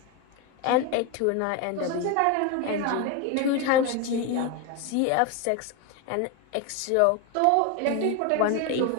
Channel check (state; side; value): different; both; correlation 0.02